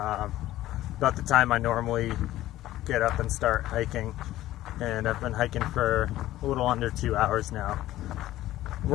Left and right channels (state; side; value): quieter; right; 14.9 dB